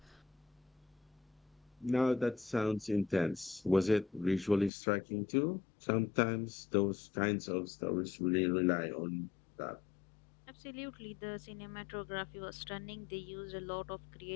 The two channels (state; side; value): drops out; right; at 4.7 s